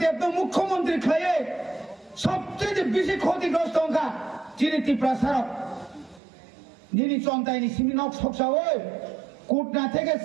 देवनो मुख्यमंत्री खायो सबचेয়ে বেশি ক্ষতিগ্রস্ত অংকা যিনি ত্রিপ্রাসার নিনি চন্তাইনি সিমিনক সকসাওই কোটনা থেকে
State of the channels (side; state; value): left; drops out; at 6.2 s